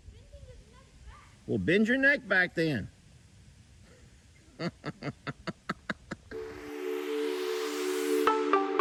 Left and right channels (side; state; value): both; identical; correlation 1.00